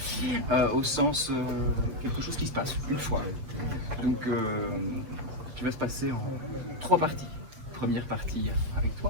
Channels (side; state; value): left; late; 6.4 ms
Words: au sens quelque chose qui se passe une fois. Donc, qui va se passer en 3 parties. Première partie avec